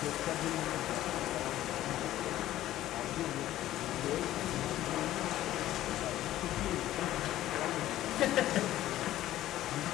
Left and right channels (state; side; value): quieter; right; 14.0 dB